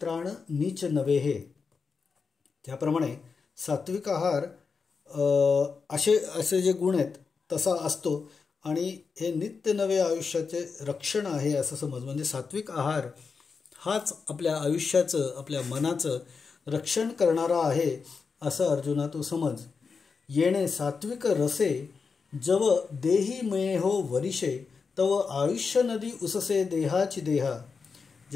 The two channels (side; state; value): right; quieter; 5.2 dB